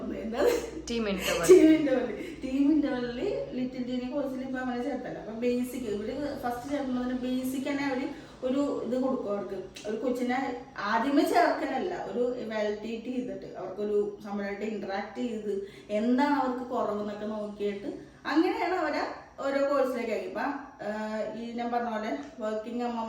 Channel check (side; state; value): both; identical; correlation 1.00